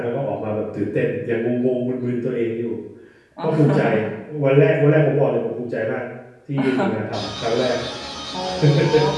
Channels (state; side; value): identical; both; correlation 1.00